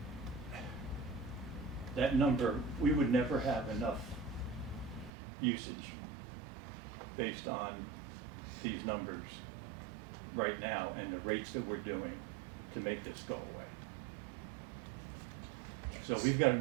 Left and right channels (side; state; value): left; drops out; at 5.1 s